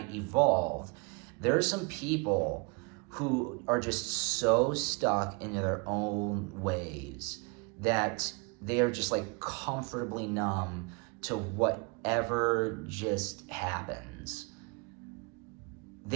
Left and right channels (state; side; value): quieter; left; 30.7 dB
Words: evolved. There are some people who are just so stuck into their own ways that they are just like comfortably numb to whatever just happens.